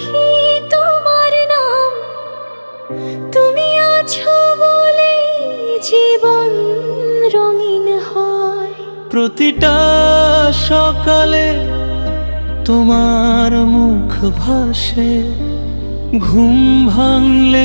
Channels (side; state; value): both; inverted; correlation -1.00